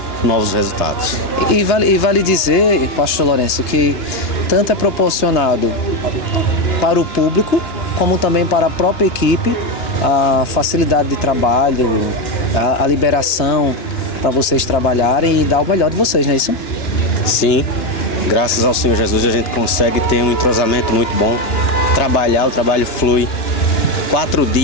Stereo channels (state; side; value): late; right; 2.9 ms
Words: novos resultados. E vale dizer, pastor Lourenço, que tanto é proporcionado para o público, como também para a própria equipe, a facilidade de trabalho, a liberação para vocês trabalharem e dar o melhor de vocês, não é isso? Sim, graças ao Senhor Jesus a gente consegue ter um entrosamento muito bom, o trabalho flui. 4